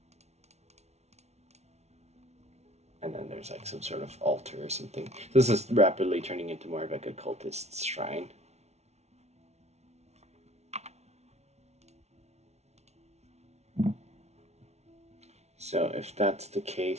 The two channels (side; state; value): left; late; 0.31 ms